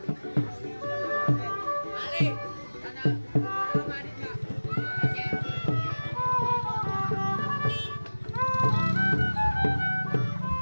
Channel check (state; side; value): inverted; both; correlation -1.00